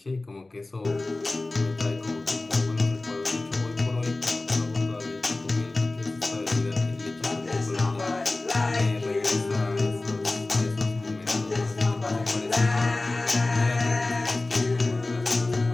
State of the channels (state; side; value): quieter; right; 3.0 dB